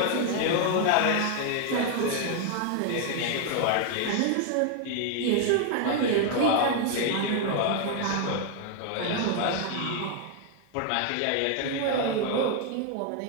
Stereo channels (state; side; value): different; both; correlation 0.00